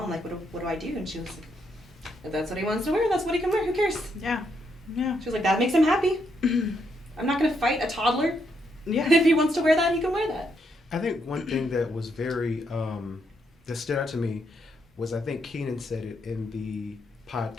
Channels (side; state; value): both; normal; correlation 0.77